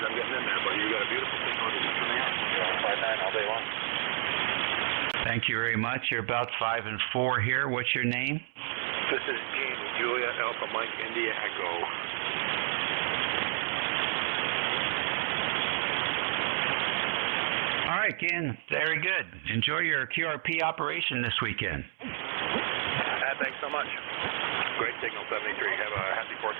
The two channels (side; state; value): left; silent; 57 dB below the other